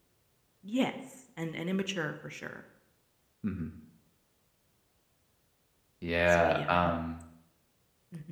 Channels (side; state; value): both; identical; correlation 1.00